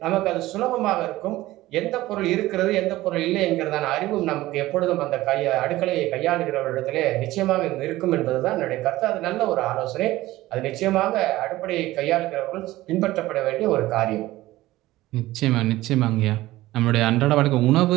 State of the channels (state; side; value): quieter; left; 17.0 dB